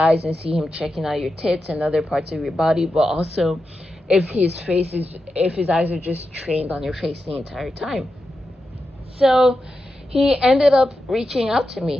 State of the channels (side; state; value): both; normal; correlation 0.89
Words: and see him checking out your tits and other parts of your body, but also if his eyes are just trained on your face the entire time. So he ended up reaching out to me.